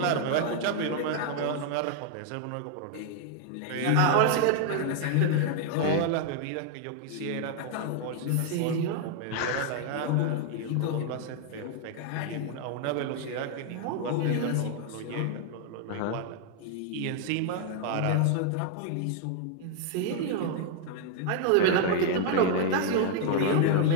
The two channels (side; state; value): both; different; correlation 0.00